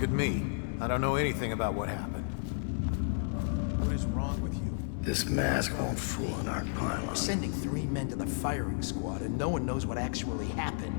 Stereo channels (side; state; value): right; silent; digital silence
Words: at me. I don't know anything about what happened. What is wrong with you? This mask won't fool an arc pylon. We're sending 3 men to the firing squad, and no one knows what actually